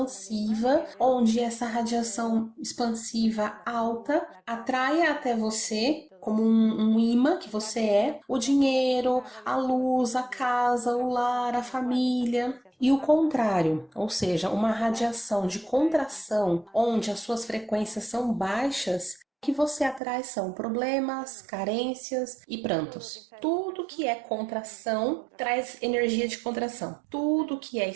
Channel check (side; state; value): left; drops out; at 20.0 s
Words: onde essa radiação expansiva alta atraia até você como um imã que você é, o dinheiro, a luz, a casa, o lar, a família. E o contrário, ou seja, uma radiação de contração, onde as suas frequências são baixas, o que você atrai são problemas, carências e prantos. Tudo que é contração traz energia de contração. Tudo que é